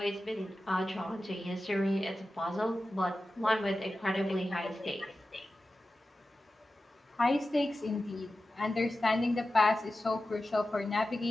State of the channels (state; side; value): normal; both; correlation 0.94